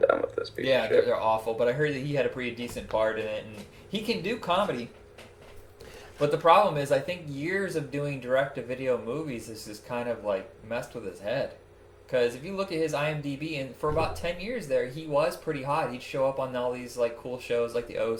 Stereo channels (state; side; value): identical; both; correlation 1.00